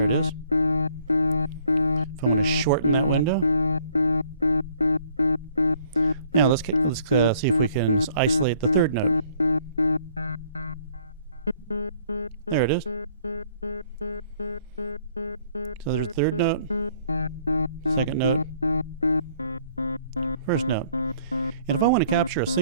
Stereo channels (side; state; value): both; inverted; correlation -0.61